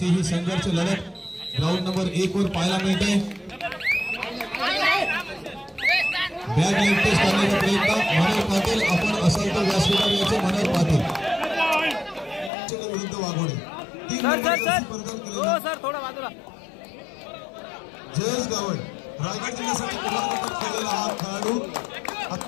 ही संघर्ष लढत ग्राउंड नंबर 1 वर पाहायला मिळते. बॅग लाईट टेस्ट करण्याचा प्रयत्न मनोहर पाटील. आपण असाल तर व्यासपीठावर याचे मनोहर पाटील विरुद्ध Waghode. 3 sir number sir Jersey sir परिधान हो केलेला सर थोडा बाजूला. जयेश गावड रायगड जिल्ह्यासाठी पुनर्गठन केलेला हा खेळाडू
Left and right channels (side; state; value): right; drops out; at 12.5 s